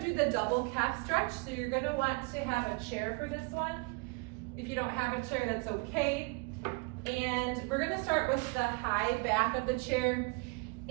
do the double calf stretch. So you're going to want to have a chair for this one. If you don't have a chair, that's okay. And we're going to start with the high back of the chair,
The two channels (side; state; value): left; quieter; 30.5 dB